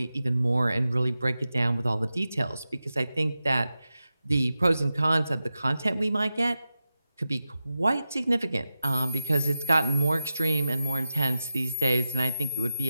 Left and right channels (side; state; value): both; inverted; correlation -0.92